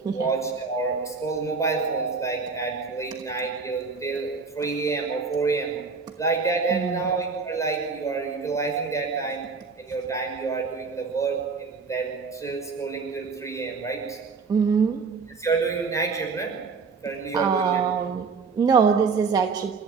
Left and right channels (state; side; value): quieter; left; 4.9 dB